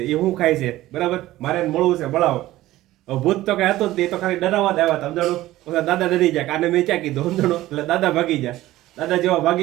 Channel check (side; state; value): left; quieter; 16.0 dB